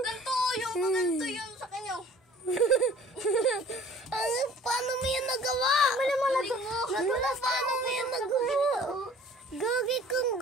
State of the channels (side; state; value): both; normal; correlation 0.50